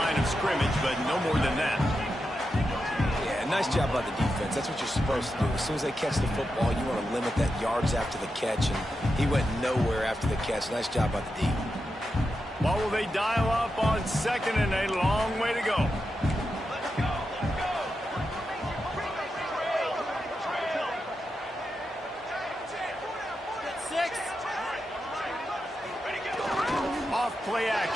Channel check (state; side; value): normal; both; correlation 0.88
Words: of scrimmage, but no more than that. Yeah, nice job by the defense. That's what you're supposed to do. As soon as they catch the football, you want to limit that yards after the catch, and he went nowhere after the catch. Nice job by the D. What will they dial up on 2nd and a long way to go? Play